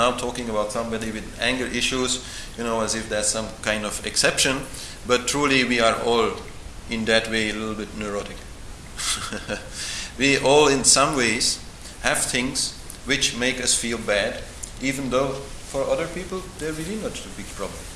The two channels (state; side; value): identical; both; correlation 1.00